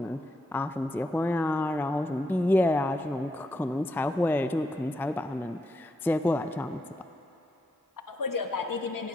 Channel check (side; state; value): both; normal; correlation 0.82